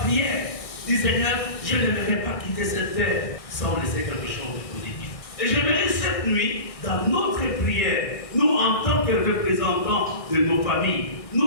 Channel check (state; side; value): late; right; 1.6 ms